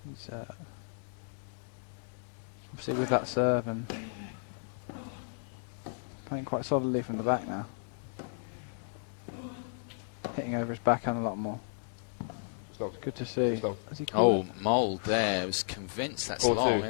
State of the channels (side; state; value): right; silent; digital silence